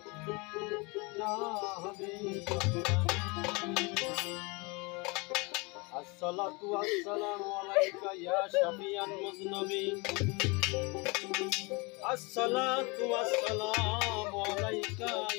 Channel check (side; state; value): right; quieter; 28.0 dB